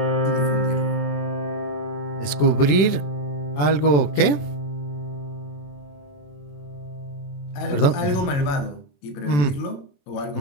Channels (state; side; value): late; right; 21 ms